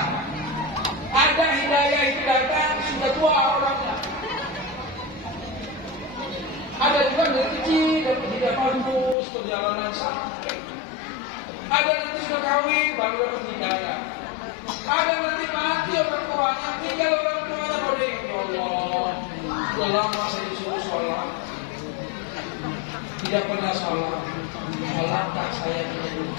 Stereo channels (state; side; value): drops out; right; at 9.2 s